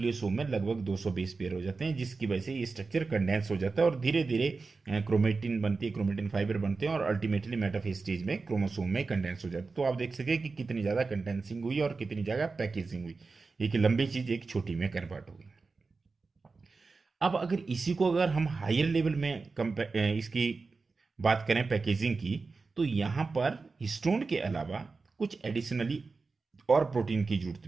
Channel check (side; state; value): left; quieter; 4.2 dB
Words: में लगभग 220 पेयर हो जाते हैं, जिसकी वजह से ये स्ट्रक्चर कंडेंस हो जाता है और धीरे धीरे क्रोमेटिन बनती है, क्रोमेटिन फाइबर बनते हैं और अल्टीमेटली मेटाफेज स्टेज में क्रोमोसोम में कंडेंस हो जाता है। तो आप देख सके कि कितनी ज़्यादा कंडेंसिंग हुई और कितनी जगह पैकेजिंग हुई, एक लंबी चीज़ एक छोटी में कन्वर्ट हो गई। अब अगर इसी को अगर हम हायर लेवल में इसकी बात करें पैकेजिंग की, तो यहाँ पर हिस्टोन के अलावा कुछ एडिशनली और प्रोटीन की जरूरत